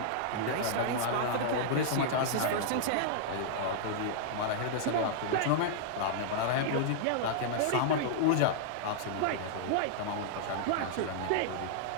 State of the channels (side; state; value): both; different; correlation -0.01